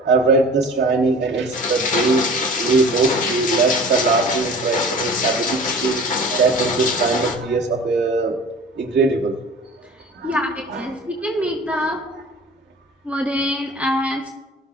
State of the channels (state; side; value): normal; both; correlation 0.42